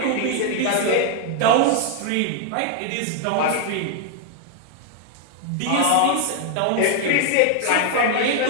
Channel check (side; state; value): both; different; correlation 0.00